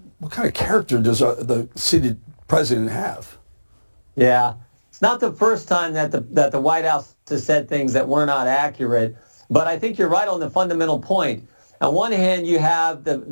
of character does the seated president have? Yeah, it's not the first time that the White House has said things that were not accurate, but I think you're right on the fundamental point. On one hand, you have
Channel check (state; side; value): inverted; both; correlation -1.00